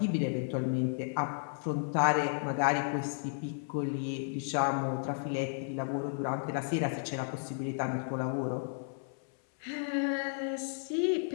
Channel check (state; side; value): silent; right; 56 dB below the other